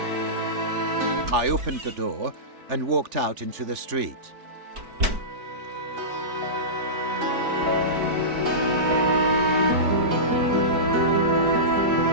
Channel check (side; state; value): left; late; 4.5 ms